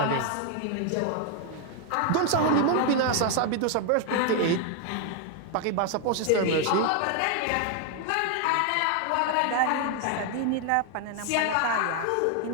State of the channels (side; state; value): both; different; correlation 0.01